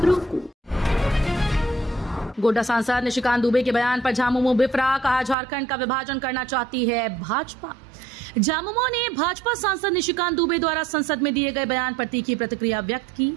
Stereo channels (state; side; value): drops out; left; at 5.4 s